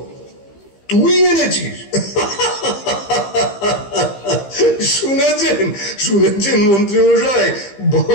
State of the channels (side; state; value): right; late; 15 ms